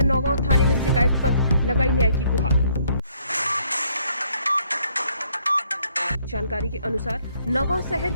नौगांव थाने में शिकायत पत्र, लगाई न्याय की गुहार। जानकारी के अनुसार नौगांव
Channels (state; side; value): inverted; both; correlation -0.67